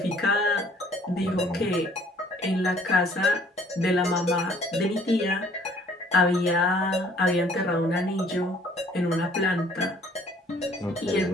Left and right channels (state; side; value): normal; both; correlation 0.58